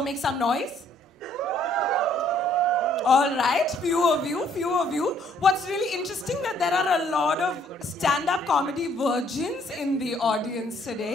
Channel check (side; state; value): both; normal; correlation 0.64